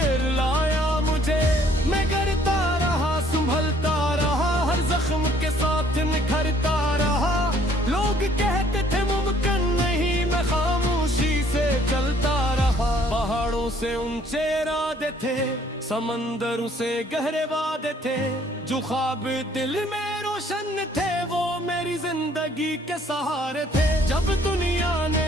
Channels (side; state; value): both; normal; correlation 0.61